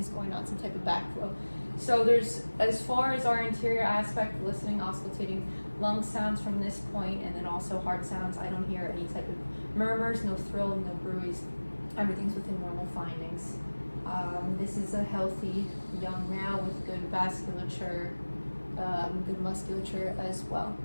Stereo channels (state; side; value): inverted; both; correlation -1.00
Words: going on, some type of backflow. So there's, as far as our interior aspect, listening, auscultating lung sounds from this point, and then also heart sounds. I don't hear any type of murmurs, no thrill, no bruise. Everything's within normal findings. This is a healthy young male with good vasculature, good musculature as well.